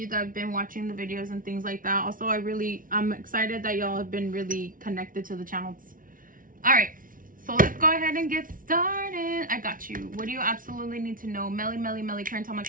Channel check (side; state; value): left; late; 0.39 ms